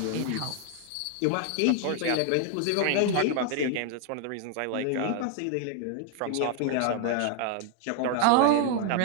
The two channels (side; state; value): both; different; correlation 0.00